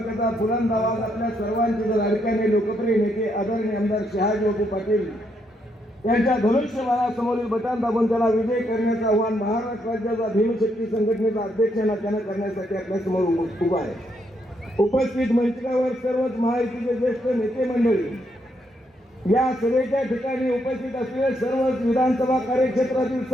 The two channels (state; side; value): normal; both; correlation 0.76